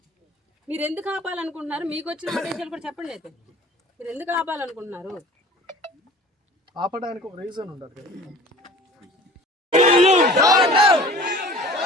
మీరు ఎందుకు ఆపాలనుకుంటున్నారు? మీకు వచ్చిన ఆదేశాలు కూడా చెప్పండి. అయితే మీరు ఎందుకు ఆపాలనుకుంటున్నారు? ఆపడానికి ఒక రీజన్ ఉండదు.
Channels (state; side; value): normal; both; correlation 0.44